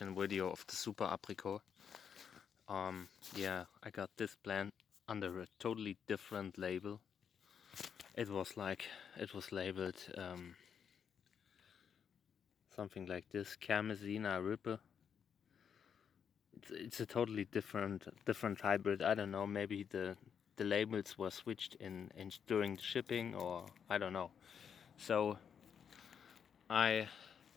video of the Super Apricot. Yeah, I got this plant under a totally different label. It was labeled something like this, Kermesina ripe. It's a totally different hybrid. I don't know, maybe the labels were switched in during the shipping, or I don't know. So I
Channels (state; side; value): quieter; right; 7.5 dB